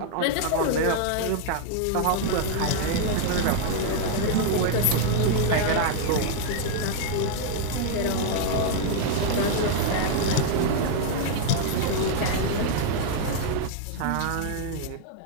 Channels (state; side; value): different; both; correlation 0.00